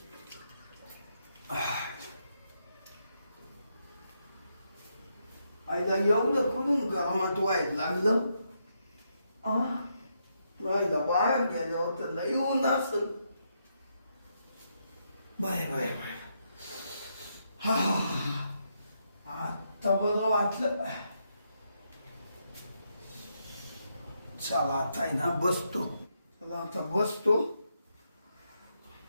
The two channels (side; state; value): both; inverted; correlation -0.80